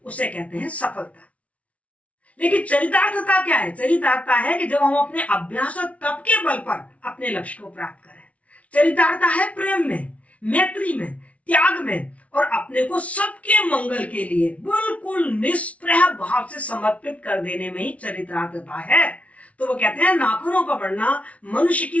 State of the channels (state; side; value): late; right; 0.065 ms